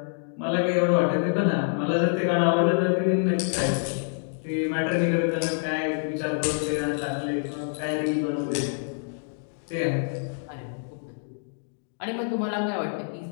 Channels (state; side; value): silent; right; digital silence